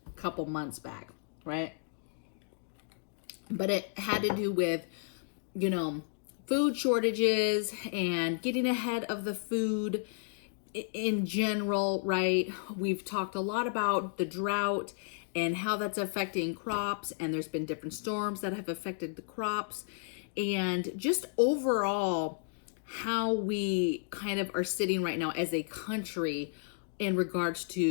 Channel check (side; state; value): right; silent; digital silence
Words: a couple months back, right? But it had to do with, food shortages and getting ahead of the food in general, right? We've talked a lot about the drought and how that's affecting crops, and there's been different storms that have affected the crops, and just overall how we kind of are sitting right now as a country in regards